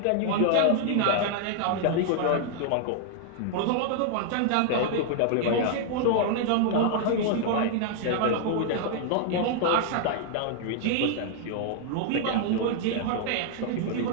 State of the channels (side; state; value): both; different; correlation 0.00